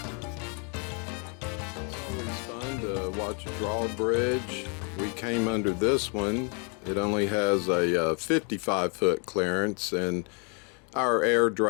It's always fun to watch a drawbridge. We came under this one. It only has a 55-foot clearance, and our air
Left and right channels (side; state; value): right; quieter; 37.0 dB